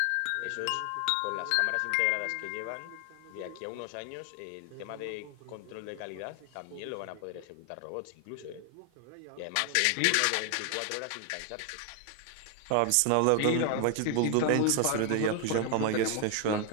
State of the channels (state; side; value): different; both; correlation 0.00